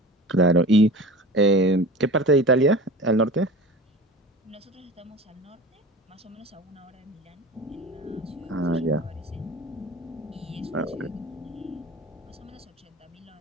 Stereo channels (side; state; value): both; normal; correlation 0.35